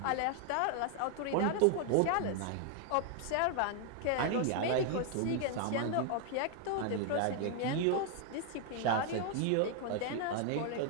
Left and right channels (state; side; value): different; both; correlation 0.00